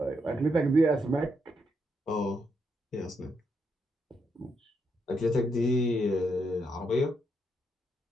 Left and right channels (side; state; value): both; normal; correlation 0.79